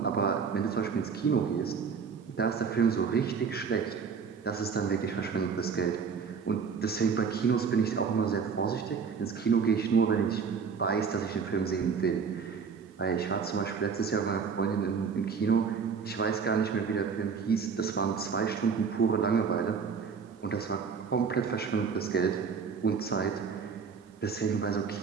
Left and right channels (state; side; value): quieter; left; 5.9 dB